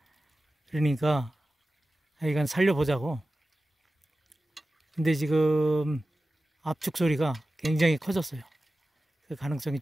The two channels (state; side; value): normal; both; correlation 0.95